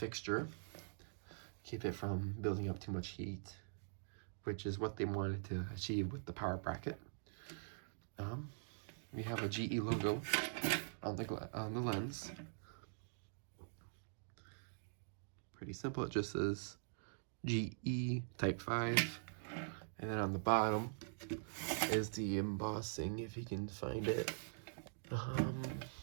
keep it from building up too much heat, which is what they wanted to achieve with the power bracket. We have a GE logo on the lens. Pretty simple, it just says GE Type 5, and then on the bottom is the embossing, if you can find it. It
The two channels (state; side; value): silent; left; digital silence